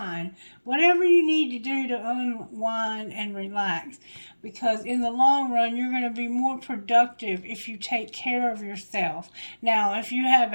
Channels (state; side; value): inverted; both; correlation -1.00